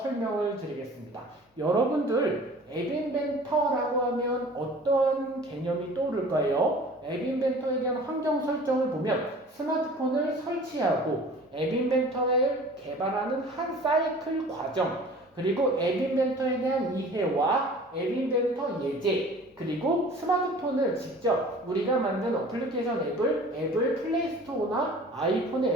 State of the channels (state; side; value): normal; both; correlation 0.45